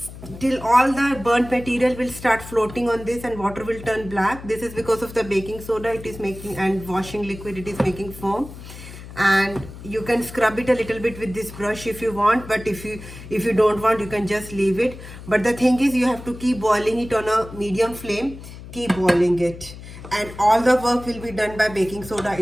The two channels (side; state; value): left; noise; hum, 14 dB below the sound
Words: till all the burnt material will start floating on this and water will turn black. This is because of the baking soda it is making, and washing liquid it is making foam. And you can scrub it a little bit with this brush if you want, but if you don't want, you can just leave it. But the thing is, you have to keep boiling it on a medium flame. Keep boiling it, and all the work will be done by baking soda